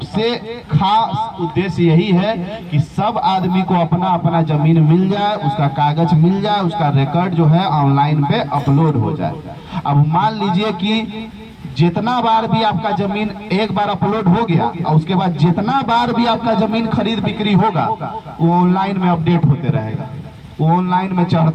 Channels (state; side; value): identical; both; correlation 1.00